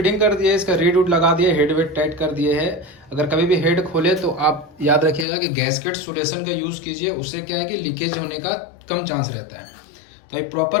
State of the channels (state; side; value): drops out; right; at 5.2 s